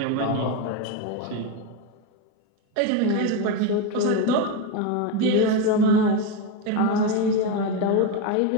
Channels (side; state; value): both; different; correlation 0.04